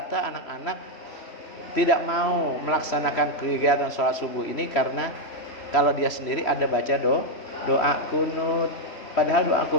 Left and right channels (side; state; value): right; late; 3.1 ms